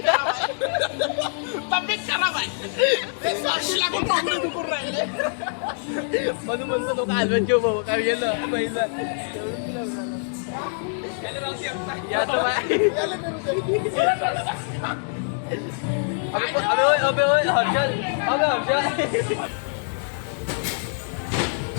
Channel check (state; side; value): silent; right; digital silence